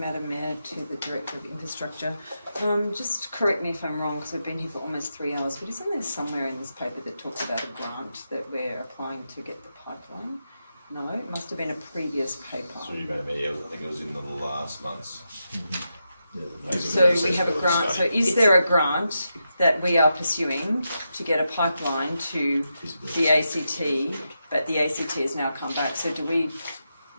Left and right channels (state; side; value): inverted; both; correlation -0.86